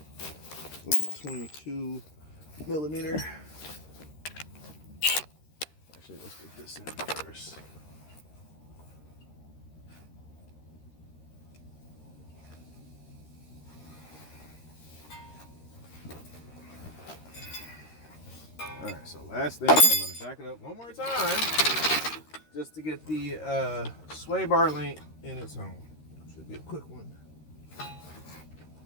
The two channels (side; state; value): right; late; 13 ms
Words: 22 millimeter. Actually, let's get this in first. All right, so last thing, I'm gonna jack it up one more time just to get the sway bar link in its home. Should be a quick one.